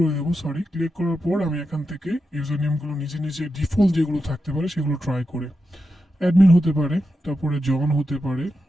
দেবো, সরি। ক্লিক করার পর আমি এখান থেকে ইউজার নেমগুলো নিজে নিজে ডিফল্ট যেগুলো থাকতে পারে সেগুলো ট্রাই করে, অ্যাডমিন হতে পারে, তারপরে জন হতে পারে,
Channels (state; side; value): normal; both; correlation 0.88